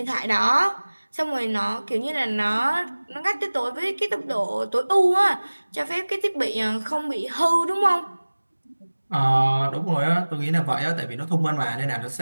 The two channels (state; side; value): inverted; both; correlation -1.00